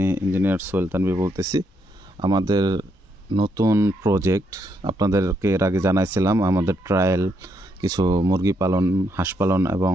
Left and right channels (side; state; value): both; normal; correlation 0.76